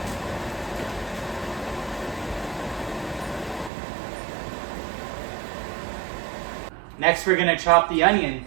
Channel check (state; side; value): drops out; left; at 3.7 s